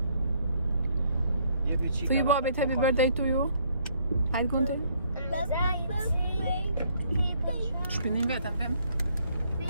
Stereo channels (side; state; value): both; inverted; correlation -0.66